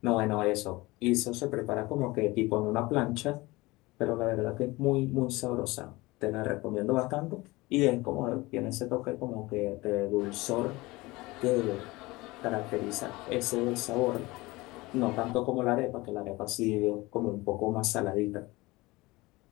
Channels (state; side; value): quieter; right; 21.6 dB